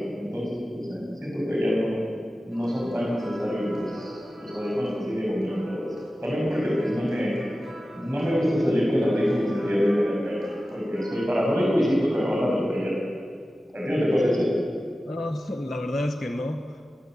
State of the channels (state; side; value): normal; both; correlation 0.94